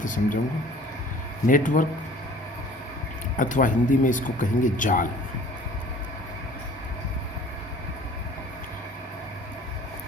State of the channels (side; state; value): both; normal; correlation 0.49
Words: समझाऊंगा। नेटवर्क अथवा हिंदी में इसको कहेंगे जाल।